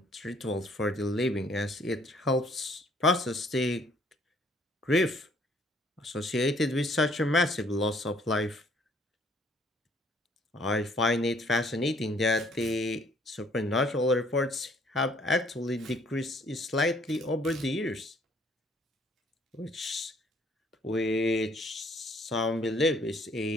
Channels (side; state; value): both; normal; correlation 0.61